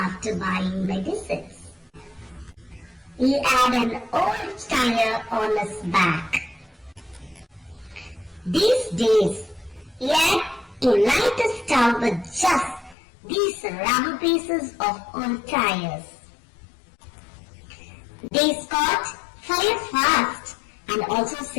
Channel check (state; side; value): drops out; right; at 13.0 s